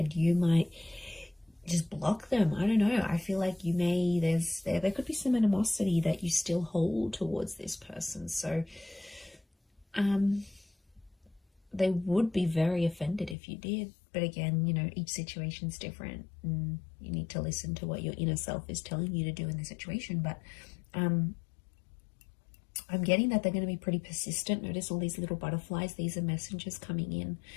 You might just block them. I don't know. I feel like you may, there could be some animosity that you still hold towards this person. So, they would be very offended if you did. But again, each situation's different and you need to listen to what your inner self is telling you to do in the situation. But I'm getting that they're going to be pretty persistent. Notice all these little butterflies. These are messengers coming in.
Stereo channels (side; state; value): right; drops out; at 13.4 s